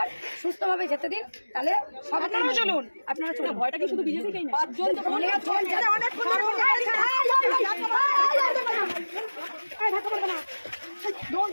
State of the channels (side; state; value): both; inverted; correlation -1.00